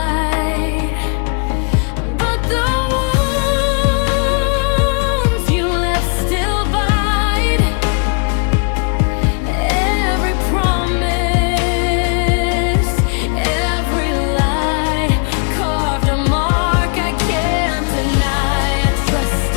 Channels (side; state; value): right; quieter; 37.7 dB